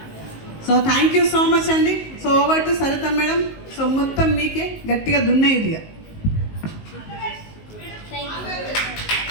So thank you so much అండి. So over to Saritha madam. So మొత్తం మీకే గట్టిగా దున్నే ఇది.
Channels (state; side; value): late; right; 19 ms